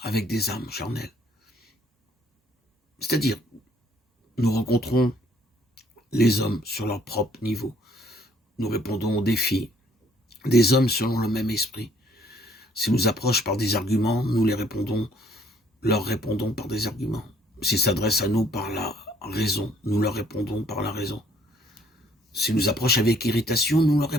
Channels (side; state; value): both; normal; correlation 0.63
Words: avec des âmes charnelles. C'est-à-dire, nous rencontrons les hommes sur leur propre niveau. Nous répondons aux défis des hommes selon le même esprit. S'ils nous approchent par des arguments, nous leur répondons par des arguments. S'ils s'adressent à nous par la raison, nous leur répondons par la raison. S'ils nous approchent avec irritation, nous leur